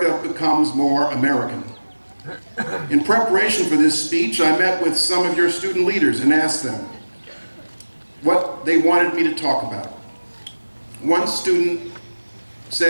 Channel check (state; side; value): inverted; both; correlation -1.00